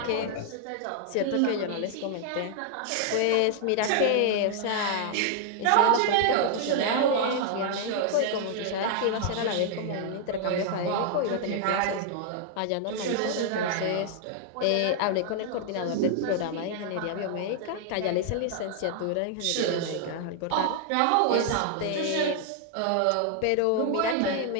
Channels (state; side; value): different; both; correlation 0.00